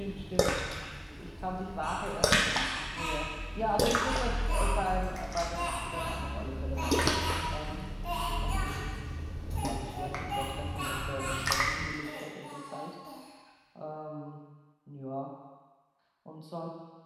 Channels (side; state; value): both; identical; correlation 1.00